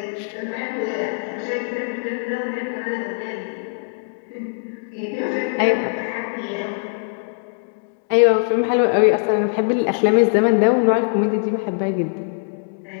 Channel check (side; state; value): right; silent; digital silence